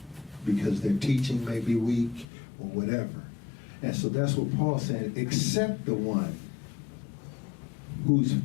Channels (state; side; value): drops out; right; at 2.2 s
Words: because their teaching may be weak or whatever. And so that's what Paul said, except the one whose